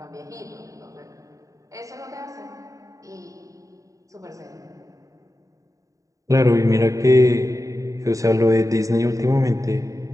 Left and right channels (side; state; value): left; late; 0.16 ms